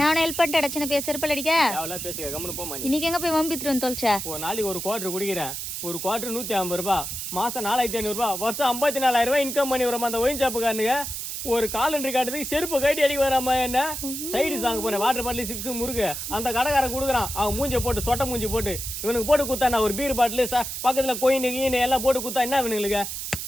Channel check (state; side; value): noise; right; hiss, 5 dB below the sound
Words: ஹெல்ப் பண்ணிட்டு அடிச்சு பேச செருப்பால் அடிக்க அவ்வளோ பேசுக கம்முன்னு போமா. இன்னைக்கு எங்க போய் வம்பித்துட்டு வந்து தொலைச்சா? ஒரு நாளைக்கு ஒரு குவார்டர் குடிக்கிறேன். ஒரு குவார்டர் 150 ரூபாய், மாசம் 4500 ரூபாய், வருஷம் 54,000 ரூபாய் இன்கம் பண்ணி வரோம். அந்த ஒயின்சாப்புக்காரனுங்க ஒரு காலண்டர் காட்டுறதுக்கு செருப்பு கட்டி அடிக்க வராம என்ன சைடு சாங்க போனேன். வாட்டர் பாட்டில் சிப்ஸ் முறுக்கு அந்த கடைக்காரன் கொடுக்குறான். அவன் மூஞ்சி போட்டு சொட்டை மூஞ்சி போட்டு இவனுக்கு போட்டு குத்தா ஒரு பீர் பாட்டில் பக்கத்துல கோயின் கீனு எல்லாம் போட்டு குத்தா என்ன இவனுங்களுக்கு?